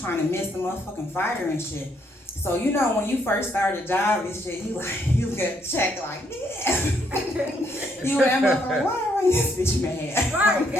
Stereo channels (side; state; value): both; normal; correlation 0.72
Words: to miss the motherfucking fire and shit. So you know when you first start a job and shit, you get checked like, yeah. You that motherfucker, why are this bitch mad? I'm